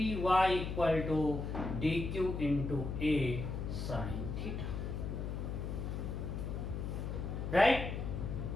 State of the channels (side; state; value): left; noise; hum, 4 dB below the sound